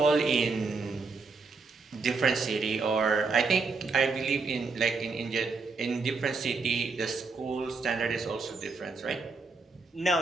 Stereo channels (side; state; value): left; quieter; 4.3 dB